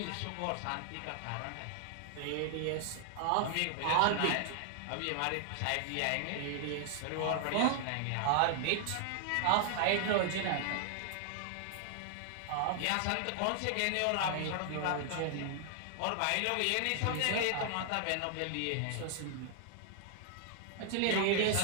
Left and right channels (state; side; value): different; both; correlation -0.01